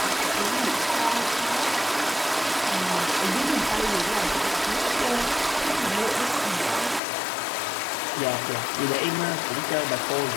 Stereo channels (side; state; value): right; drops out; at 7.0 s